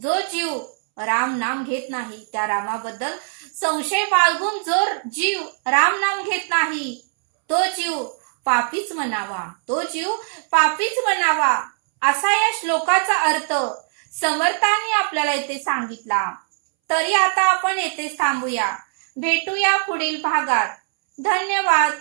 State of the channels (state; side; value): silent; left; 65 dB below the other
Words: जीव राम नाम घेत नाही, त्या रामाबद्दल संशय बाळगून जो जीव राम नाम घेत नाही, तो जीव पापीच म्हणावा, असा या श्लोकाचा अर्थ समर्थांनी आपल्याला इथे सांगितला. तरी आता आपण येथेच थांबूया. भेटूया पुढील भागात. धन्यवाद.